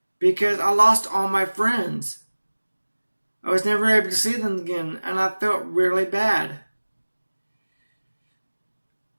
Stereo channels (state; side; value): inverted; both; correlation -1.00